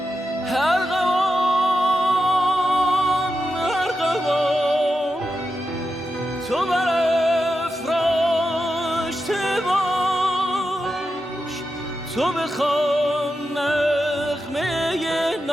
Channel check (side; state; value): both; normal; correlation 0.89